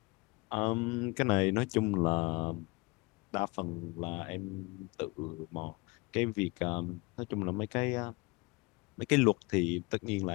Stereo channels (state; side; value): quieter; right; 25.4 dB